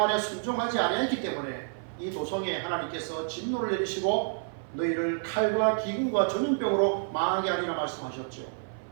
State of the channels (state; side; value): silent; left; 55 dB below the other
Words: 순종하지 아니했기 때문에 이 도성에 하나님께서 진노를 내리시고 너희를 칼과 기근과 전염병으로 망하게 하리라 말씀하셨죠.